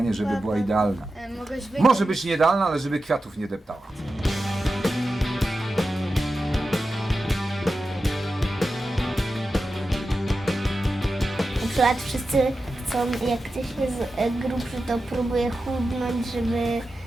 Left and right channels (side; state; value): both; normal; correlation 0.92